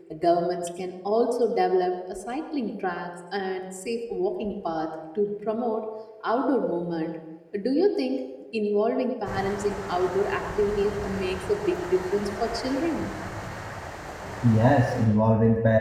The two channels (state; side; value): identical; both; correlation 1.00